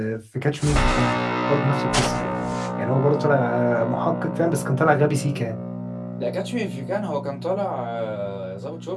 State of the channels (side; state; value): both; identical; correlation 1.00